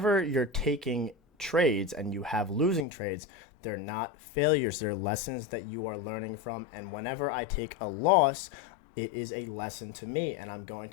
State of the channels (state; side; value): drops out; right; at 2.9 s